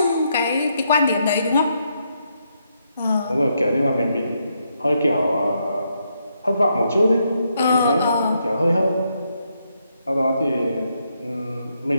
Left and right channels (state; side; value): inverted; both; correlation -0.78